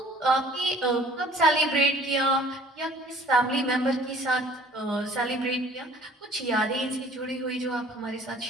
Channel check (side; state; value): both; normal; correlation 0.52